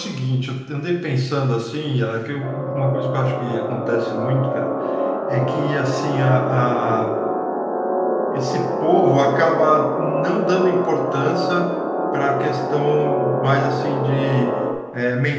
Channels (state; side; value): identical; both; correlation 1.00